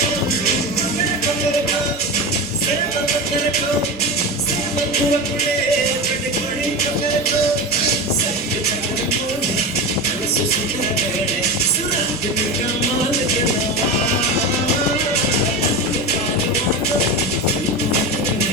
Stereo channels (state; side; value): normal; both; correlation 0.23